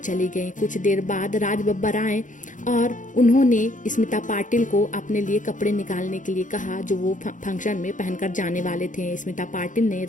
गई। कुछ देर बाद राज बब्बर आए और उन्होंने स्मिता पाटिल को अपने लिए कपड़े निकालने के लिए कहा जो वो फंक्शन में पहनकर जाने वाले थे। स्मिता पाटिल ने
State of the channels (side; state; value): right; late; 0.37 ms